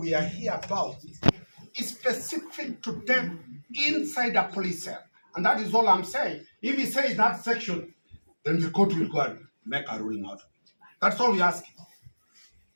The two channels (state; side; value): inverted; both; correlation -1.00